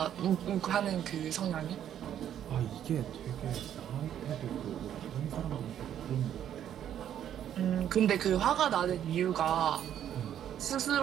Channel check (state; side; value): quieter; left; 10.2 dB